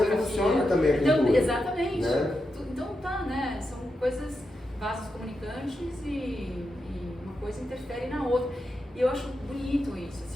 Também a pintura, então, exatamente. Né? Então tá, né? São coisas, vasos comunicantes e uma coisa interfere na outra. E eu acho bonito isso,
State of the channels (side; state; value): both; normal; correlation 0.87